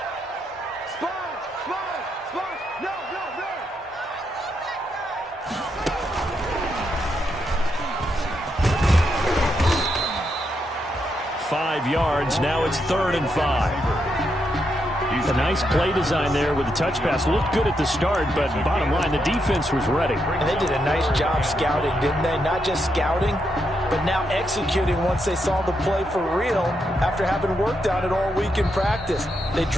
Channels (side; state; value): both; normal; correlation 0.81